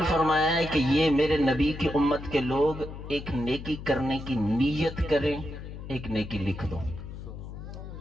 فرمایا ہے کہ یہ میرے نبی کی امت کے لوگ ایک نیکی کرنے کی نیت کریں، ایک نیکی لکھ دو،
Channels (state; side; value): noise; left; hum, 11 dB below the sound